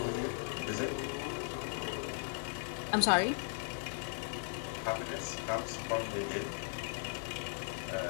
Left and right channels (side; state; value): right; silent; digital silence